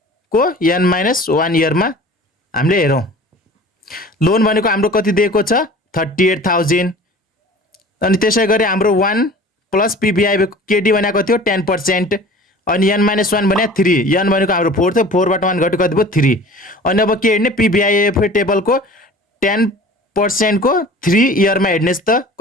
को n-1 इयरमा हामीले हेरौँ। लोन भनेको हाम्रो कति दिएको छ 38,000। अनि त्यसै गरी हाम्रो 1 प्लस PVIFA KD भनेको थियो 10%। अनि n-1 भने 3, n भनेको हाम्रो 4 थियो, 4 बाट 1 घट्यो कति भयो 3। अनि अब के हेर्ने PVIFA टेबलको 10% को 3 इयरमा हेर्नेस् त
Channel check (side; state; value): both; normal; correlation 0.43